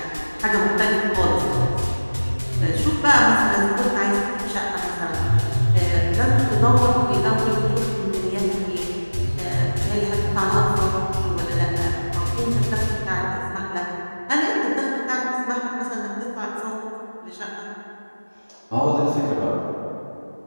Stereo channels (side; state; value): both; inverted; correlation -1.00